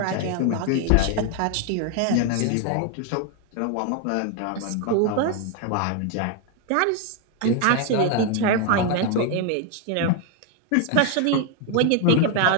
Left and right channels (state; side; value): different; both; correlation 0.01